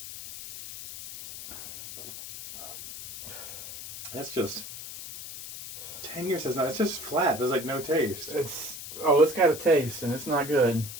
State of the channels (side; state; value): left; noise; hiss, 11 dB below the sound